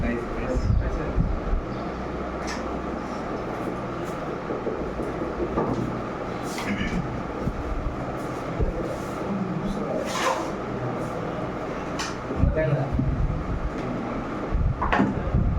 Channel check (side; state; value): both; identical; correlation 1.00